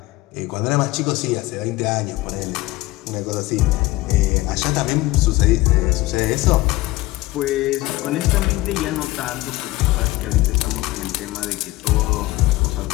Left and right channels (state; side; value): quieter; right; 19.1 dB